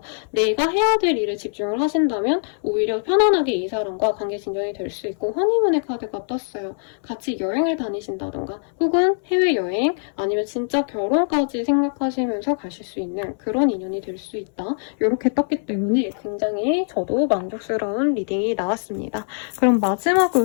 내가 해야 될 일에 집중을 하신다면 오히려 편안하게 이 사람과 관계 진전이 될 수 있고 허니문의 카드가 떴어요. 같이 여행을 다니신다던가 혹은 해외여행 아니면 진짜 결혼까지 생각하시면서 가실 수 있는 그런 인연이 될 수 있다. 이렇게 떴기 때문에 굉장히 저도 만족스러운 리딩이 나왔습니다. 그럼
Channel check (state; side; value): silent; right; 61 dB below the other